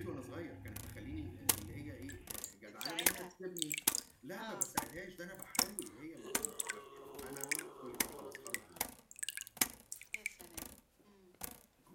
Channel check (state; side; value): identical; both; correlation 1.00